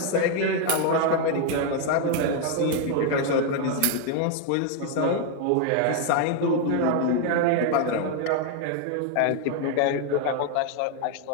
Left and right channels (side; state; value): both; different; correlation 0.01